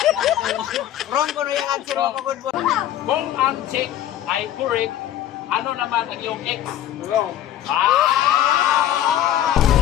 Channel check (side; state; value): right; quieter; 11.9 dB